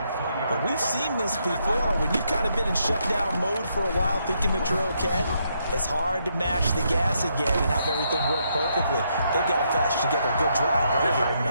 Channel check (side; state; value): both; inverted; correlation -0.77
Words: But we've seen this before when you've kind of been in shutdown mode for a while thinking that you're okay. It's hard to mash the gas again and have everything work perfectly. They've got to fashion together a good drive right here and